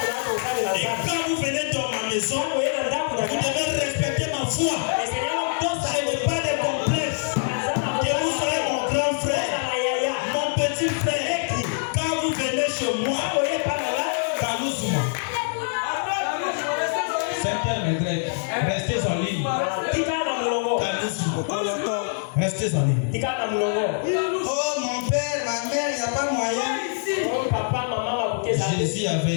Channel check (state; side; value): silent; right; digital silence